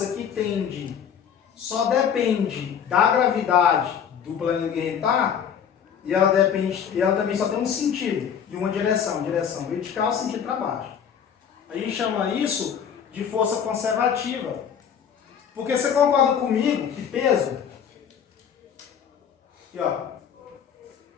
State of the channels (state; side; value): quieter; right; 8.0 dB